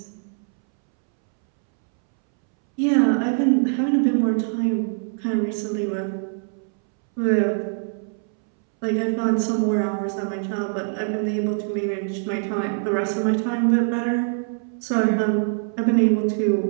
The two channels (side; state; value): left; silent; 63 dB below the other